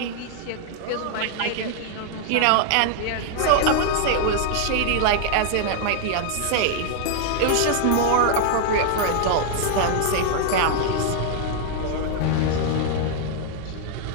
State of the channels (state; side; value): different; both; correlation 0.00